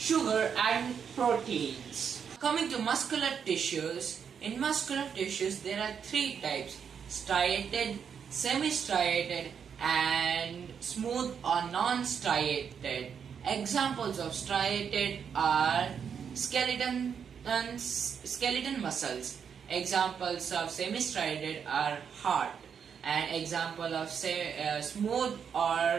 and proteins. Coming to muscular tissues, In muscular tissues, there are three types: striated, semi-striated, and smooth or non-striated. Examples of striated are skeleton muscles. Examples of semi-striated are heart. An example of smooth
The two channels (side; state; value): left; quieter; 7.2 dB